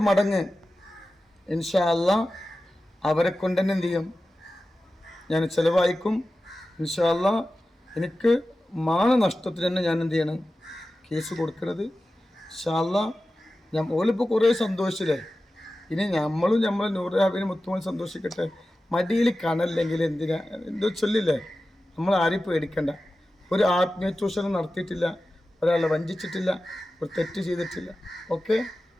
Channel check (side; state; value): both; normal; correlation 0.94